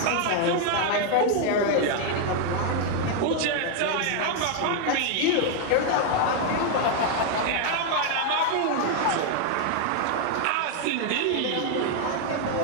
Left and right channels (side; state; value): both; different; correlation 0.00